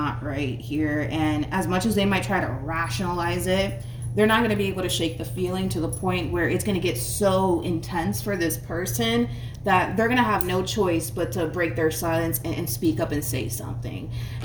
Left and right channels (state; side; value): identical; both; correlation 1.00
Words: right here. And as much as they might try to rationalize it, they're not going to be able to shake the feeling to the point where it's going to get so intense for this person that they're going to have no choice but to break their silence and speak up and say something.